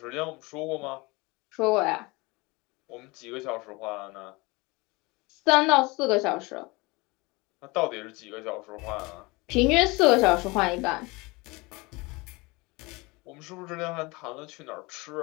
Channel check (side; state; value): right; quieter; 24.9 dB